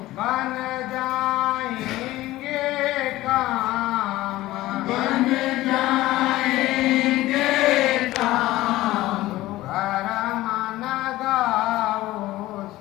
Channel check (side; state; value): right; quieter; 16.8 dB